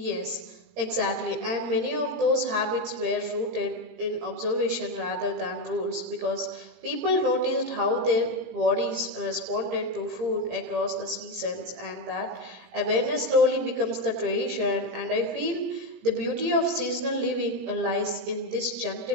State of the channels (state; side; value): late; left; 17 ms